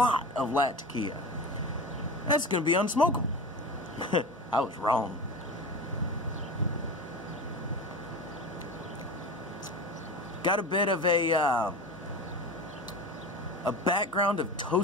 Latakia. That's going to be unsmokable. I was wrong. Got a bit of a background of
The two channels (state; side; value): normal; both; correlation 0.29